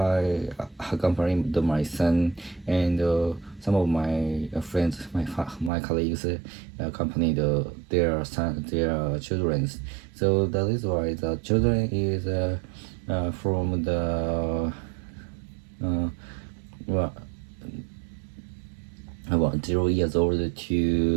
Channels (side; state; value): left; drops out; at 5.7 s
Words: accompanied my son, and some of my friends, my colleagues accompanied their children. So that is why the children is from the well, about 0 years old